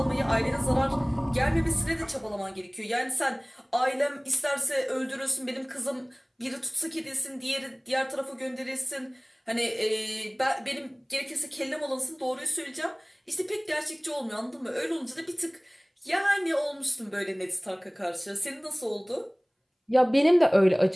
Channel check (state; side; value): identical; both; correlation 1.00